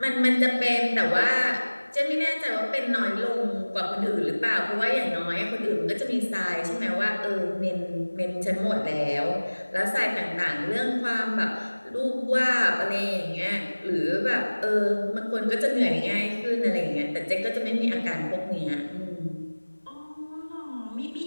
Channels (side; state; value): both; inverted; correlation -1.00